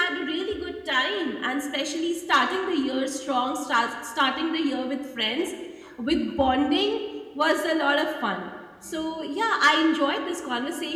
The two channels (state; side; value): identical; both; correlation 1.00